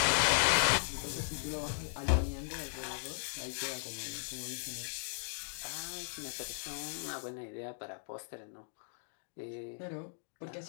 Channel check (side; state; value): right; silent; digital silence